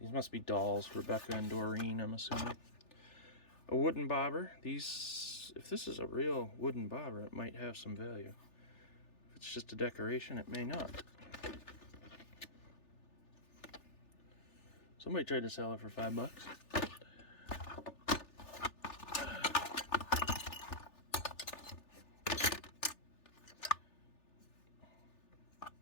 must be dolls, Rebecca and Doreen, I'm assuming. A wooden bobber. These, if this is a real wooden bobber, it might have some value. If it's just a decoration, it may not. Somebody tried to sell it for $5.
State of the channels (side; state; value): right; late; 3.4 ms